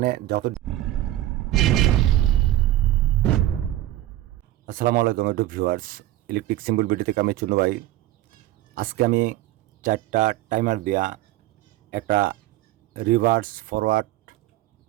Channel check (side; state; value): left; quieter; 14.9 dB